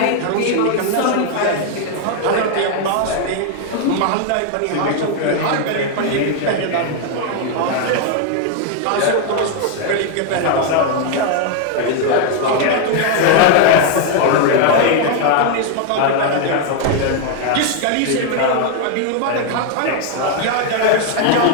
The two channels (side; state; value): both; different; correlation 0.00